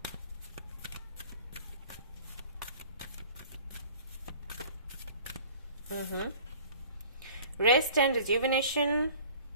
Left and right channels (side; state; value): both; inverted; correlation -0.47